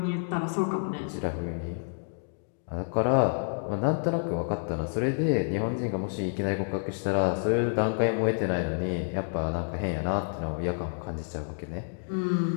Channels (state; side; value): silent; right; digital silence